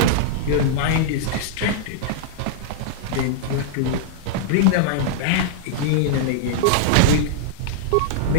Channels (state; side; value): different; both; correlation -0.01